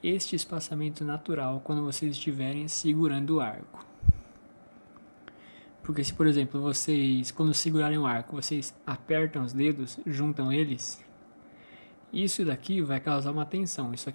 este espaçamento natural quando vocês estiverem segurando o arco. Porque se, por exemplo, vocês, quando segurarem o arco, vocês apertam os dedos, juntam eles, isso daqui vai causar uma tensão, isso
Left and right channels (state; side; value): inverted; both; correlation -1.00